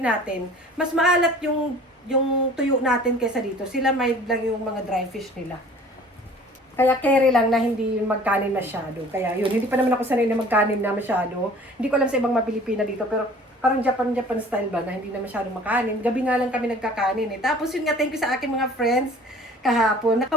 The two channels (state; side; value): normal; both; correlation 0.48